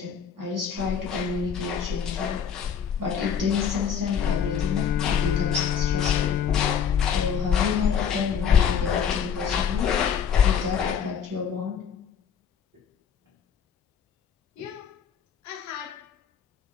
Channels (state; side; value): quieter; right; 7.4 dB